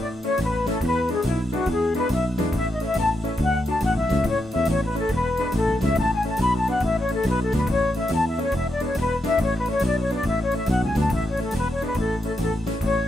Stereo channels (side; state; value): both; normal; correlation 0.84